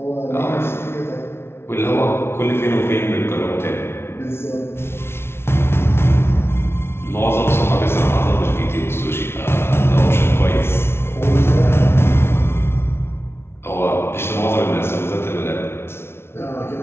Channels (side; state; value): right; late; 0.12 ms